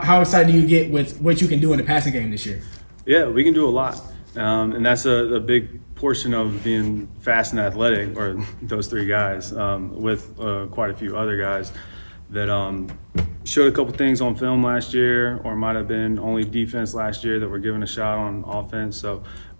excited do you get with what you can do in the passing game this year? Yeah, we can do a lot. And that's a big portion of being fast and athletic, or those three guys, with quite a few other guys that showed a couple things on film last year, or might have been only defense last year that were given a shot on offense. So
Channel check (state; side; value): inverted; both; correlation -1.00